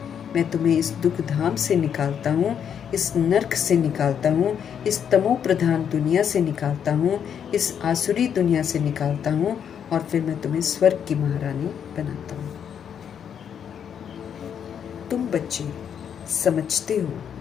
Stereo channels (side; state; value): right; quieter; 8.2 dB